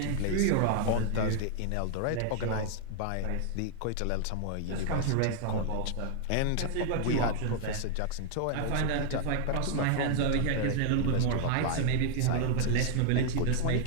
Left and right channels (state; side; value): different; both; correlation 0.00